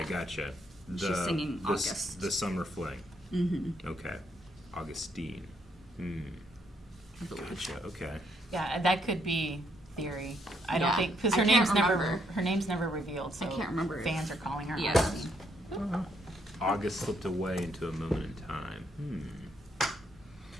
gotcha. She's singing August. The summer fling. Mm-hmm. Okay. Augustine. I believe. Gotcha. Okay. Yeah, that could be theory. I don't Yeah. think because I her can't name's remember. never revealed. So I can't remember if- Fans are calling her Yeah. Augustine. August slipped away into a moment in time.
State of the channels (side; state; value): both; normal; correlation 0.73